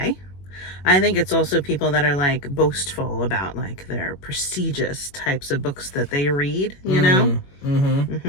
I think it's also people that are like boastful about like their prestigious types of books that they read, you know?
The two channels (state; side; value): late; right; 21 ms